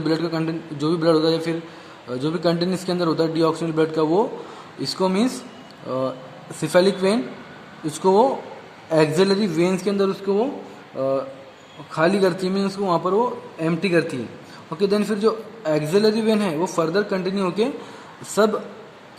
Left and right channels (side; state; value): both; identical; correlation 1.00